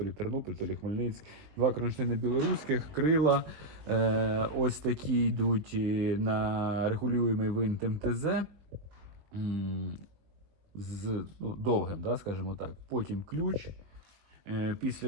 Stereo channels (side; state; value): left; late; 20 ms